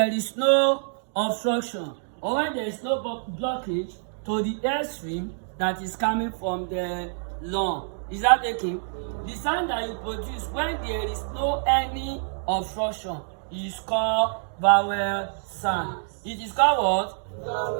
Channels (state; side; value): silent; left; digital silence